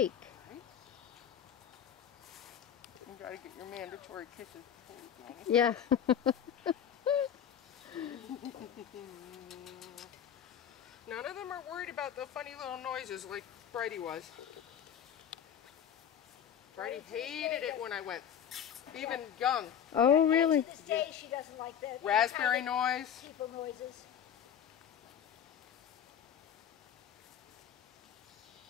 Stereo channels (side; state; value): right; quieter; 8.9 dB